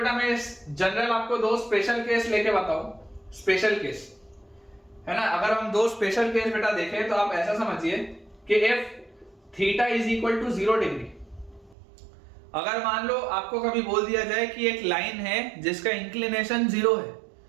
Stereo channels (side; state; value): left; drops out; at 11.8 s